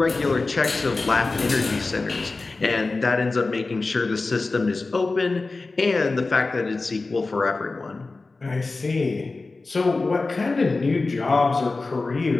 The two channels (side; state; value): right; quieter; 3.6 dB